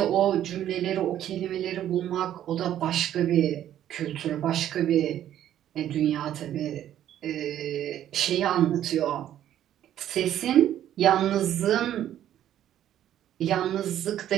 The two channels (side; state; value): left; quieter; 11.5 dB